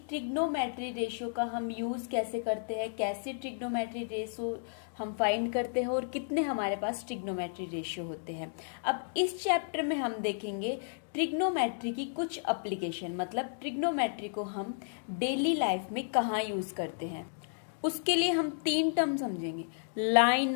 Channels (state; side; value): silent; right; digital silence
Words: ट्रिग्नोमेट्री रेशियो का हम यूज कैसे करते हैं, कैसे ट्रिग्नोमेट्री रेशियो हम फाइंड करते हैं और कितने हमारे पास ट्रिग्नोमेट्री रेशियो होते हैं। अब इस चैप्टर में हम देखेंगे ट्रिग्नोमेट्री की कुछ एप्लीकेशन, मतलब ट्रिग्नोमेट्री को हम डेली लाइफ में कहाँ यूज करते हैं। उसके लिए हम तीन टर्म समझेंगे,